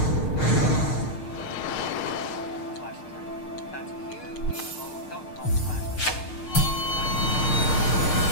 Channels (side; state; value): right; late; 6.5 ms